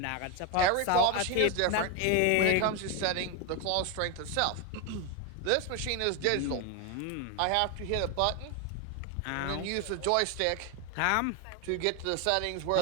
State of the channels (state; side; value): different; both; correlation 0.01